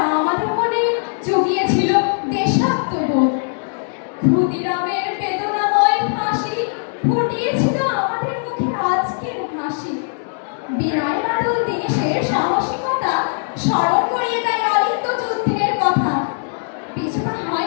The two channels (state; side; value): silent; right; digital silence